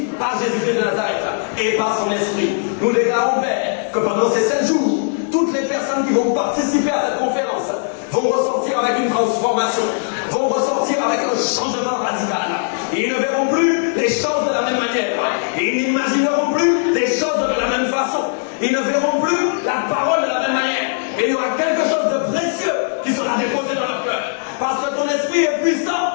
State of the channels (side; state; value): right; silent; digital silence